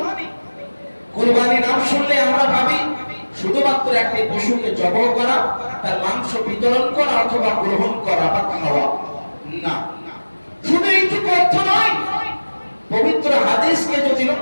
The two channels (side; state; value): both; inverted; correlation -1.00